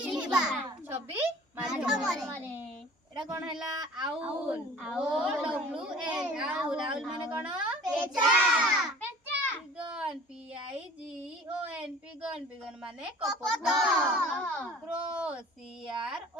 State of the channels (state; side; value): normal; both; correlation 0.46